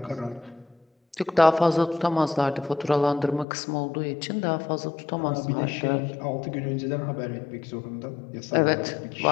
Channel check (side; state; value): right; drops out; at 3.5 s